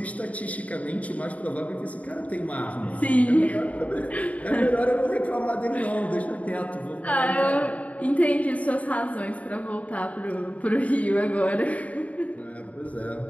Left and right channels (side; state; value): right; late; 0.069 ms